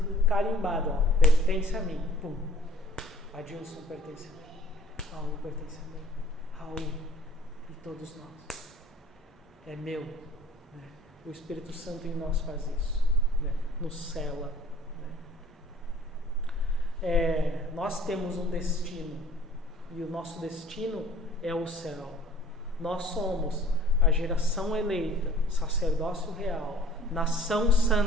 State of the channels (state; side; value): normal; both; correlation 0.52